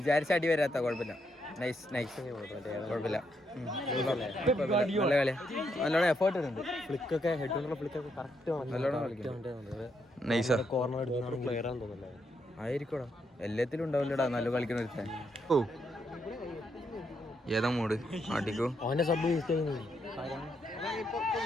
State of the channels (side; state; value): both; normal; correlation 0.78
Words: അടി വരാത്ത. കുഴപ്പമില്ല, നൈസ് കുഴപ്പമില്ല. നല്ല കളി, നല്ലോണം എഫേർട്ട് ഉണ്ട്. ഫ്ലിക്കൊക്കെ ഹെഡ് ഫ്ലിക്കൊക്കെ കറക്റ്റ് നൈസാ കോർണർ പ്ലെയർ ആണെന്ന് തോന്നുന്നില്ല. ആയിരിക്കോടാ, എല്ലാത്തിലും ഉണ്ടാവില്ലടാ നല്ല കളിക്കുന്ന ഒരുത്തൻ. ഓ ഏതാ മൂട് ആട്ടിക്കോ. അവന്റെ സബ് യൂസ് ചെയ്യുന്നു.